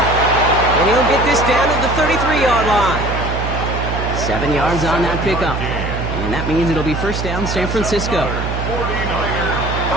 And he'll get this down to the 33-yard line. 7 yards on that pickup. And that means it'll be first down San Francisco. 49er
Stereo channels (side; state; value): right; noise; hum, 4 dB below the sound